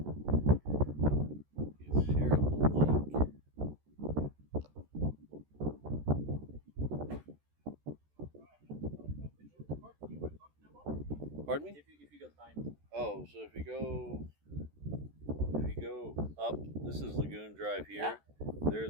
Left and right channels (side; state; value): left; late; 14 ms